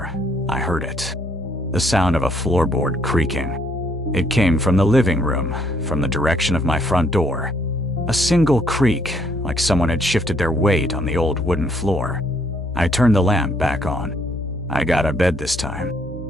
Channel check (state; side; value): normal; both; correlation 0.67